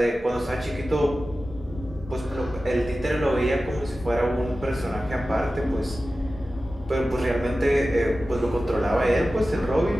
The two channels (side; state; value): both; normal; correlation 0.95